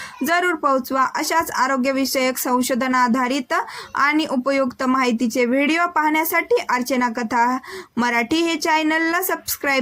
जरूर पोहोचवा. अशाच आरोग्यविषयक संशोधन आधारित आणि उपयुक्त माहितीचे व्हिडिओ पाहण्यासाठी अर्चना कथा मराठी हे चॅनलला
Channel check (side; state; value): both; identical; correlation 1.00